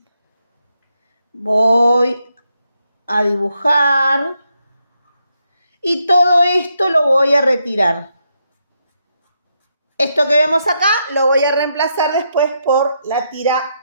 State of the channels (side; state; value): both; inverted; correlation -0.80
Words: Voy a dibujar y todo esto lo voy a retirar. Esto que vemos acá lo voy a reemplazar después por la